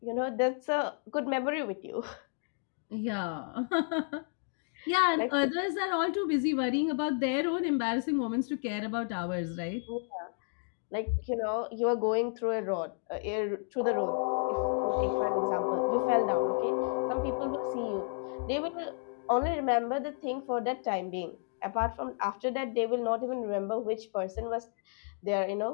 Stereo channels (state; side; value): silent; right; 56 dB below the other